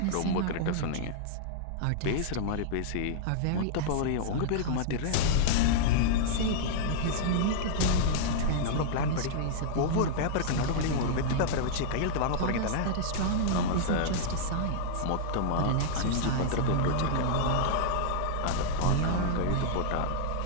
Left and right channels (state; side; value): different; both; correlation -0.02